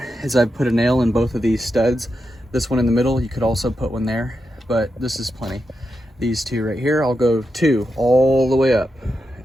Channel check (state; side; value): normal; both; correlation 0.87